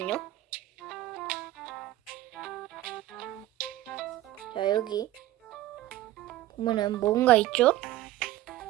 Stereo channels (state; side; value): quieter; left; 14.9 dB